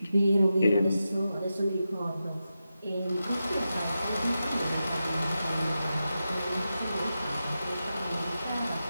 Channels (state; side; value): inverted; both; correlation -0.90